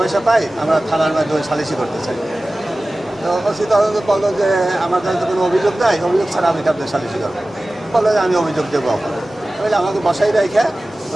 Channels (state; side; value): normal; both; correlation 0.97